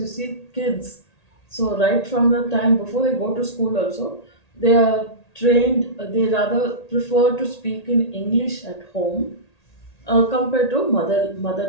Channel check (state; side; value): late; right; 1.8 ms